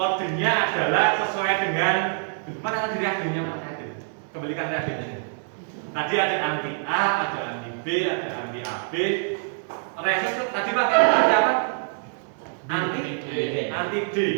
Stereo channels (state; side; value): silent; left; 62 dB below the other